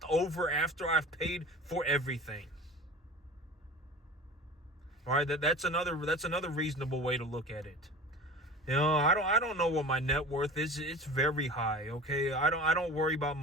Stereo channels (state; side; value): normal; both; correlation 0.36